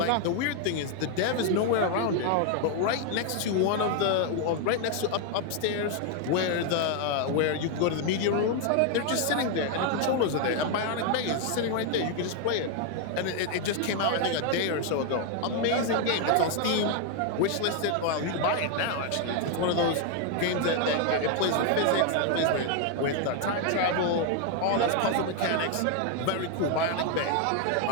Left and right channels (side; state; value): both; different; correlation 0.01